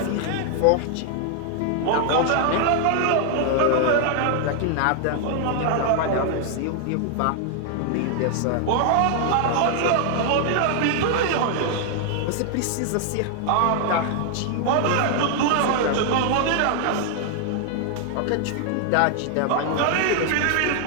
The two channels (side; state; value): both; different; correlation 0.00